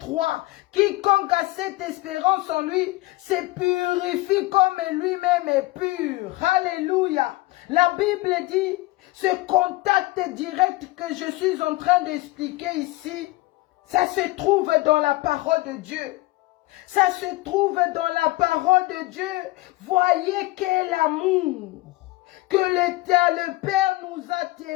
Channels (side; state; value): right; quieter; 19.9 dB